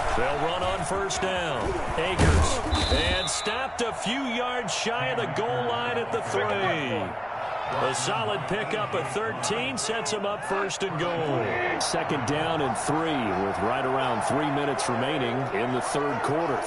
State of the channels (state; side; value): identical; both; correlation 1.00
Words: They'll run on first down. Akers. And stopped a few yards shy of the goal line at the 3. A solid pickup of 13 sets him up first and goal. Second down and 3 with right around 3 minutes remaining in the third quarter.